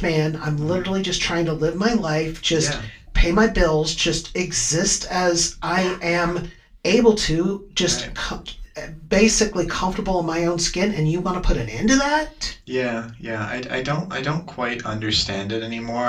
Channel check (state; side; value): identical; both; correlation 1.00